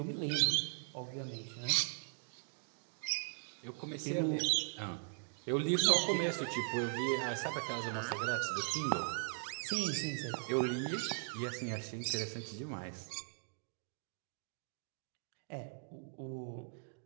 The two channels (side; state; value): left; silent; digital silence